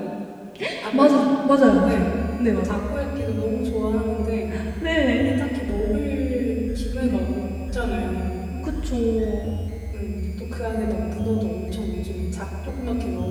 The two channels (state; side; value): identical; both; correlation 1.00